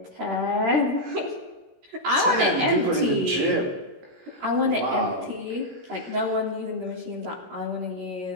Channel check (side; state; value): left; late; 16 ms